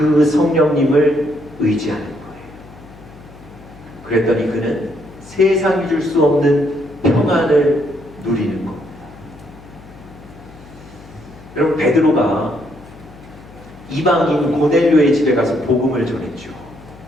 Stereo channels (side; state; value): left; noise; hum, 20 dB below the sound